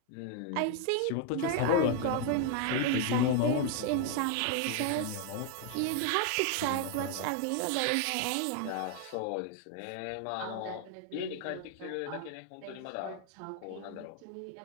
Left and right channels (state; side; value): different; both; correlation 0.01